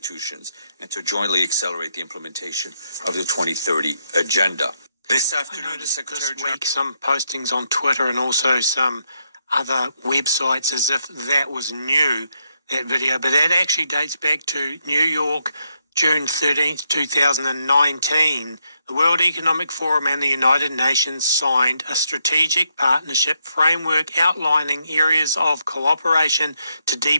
and to jointly accelerate the implementation of the 2030 agenda. This afternoon, the Secretary General... week, some postings on Twitter and also some other websites as if that was new, that video, but that actually dates back to New York, June 13th, 2019. The World Economic Forum and the United Nations signed a strategic partnership framework outlining areas of cooperation to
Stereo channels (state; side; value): inverted; both; correlation -0.78